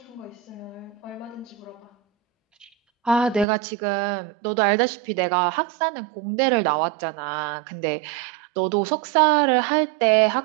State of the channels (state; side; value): drops out; left; at 3.5 s